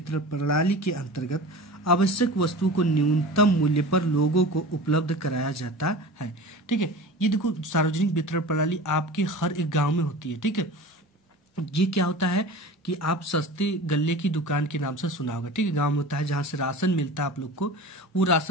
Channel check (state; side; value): normal; both; correlation 0.35